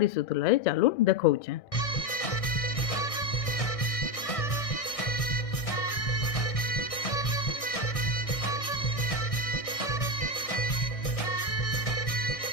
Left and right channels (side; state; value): right; late; 1.6 ms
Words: ए चालू देखौछे।